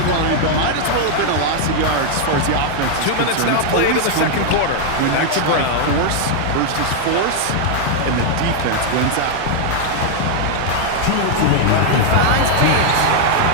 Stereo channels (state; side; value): different; both; correlation 0.00